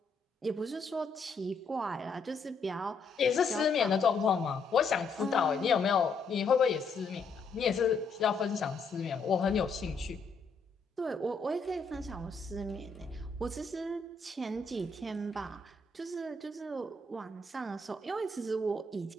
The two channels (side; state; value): right; quieter; 4.1 dB